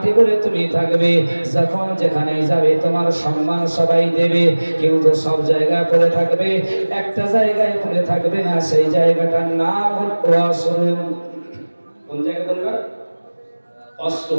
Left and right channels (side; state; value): both; inverted; correlation -1.00